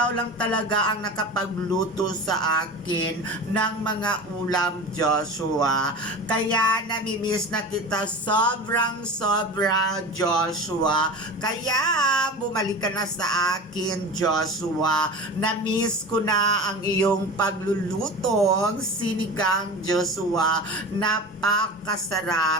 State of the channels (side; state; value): both; normal; correlation 0.32